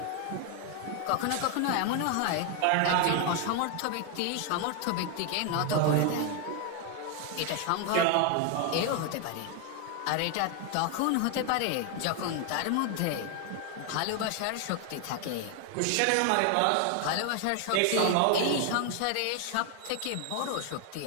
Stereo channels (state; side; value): different; both; correlation 0.01